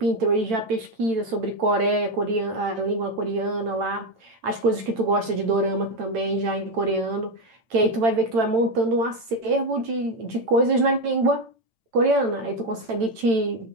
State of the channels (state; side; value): late; left; 8.9 ms